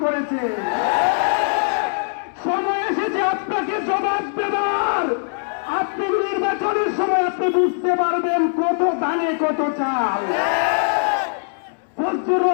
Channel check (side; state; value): right; silent; digital silence